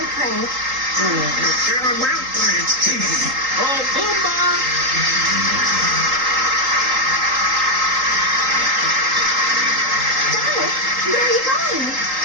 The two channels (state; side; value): late; left; 3.8 ms